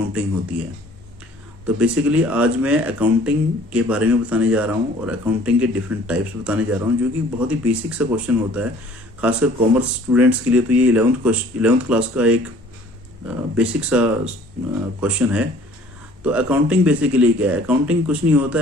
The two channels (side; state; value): both; normal; correlation 0.53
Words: होती है। तो बेसिकली आज मैं अकाउंटिंग के बारे में बताने जा रहा हूँ और अकाउंटिंग के डिफरेंट टाइप्स बताने जा रहा हूँ, जो कि बहुत ही बेसिक सा क्वेश्चन होता है। खासकर कॉमर्स स्टूडेंट्स के लिए तो ये इलेवंथ क्लास का एक बेसिक सा क्वेश्चन है। तो अकाउंटिंग बेसिकली क्या है? अकाउंटिंग कुछ नहीं होता